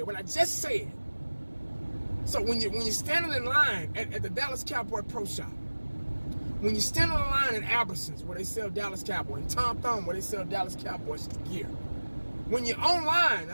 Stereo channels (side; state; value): both; inverted; correlation -1.00